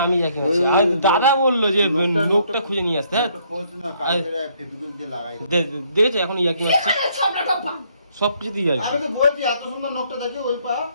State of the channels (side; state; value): both; inverted; correlation -0.68